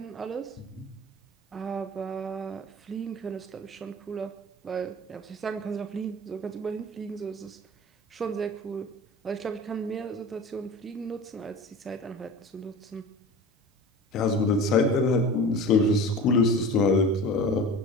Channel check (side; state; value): both; normal; correlation 0.36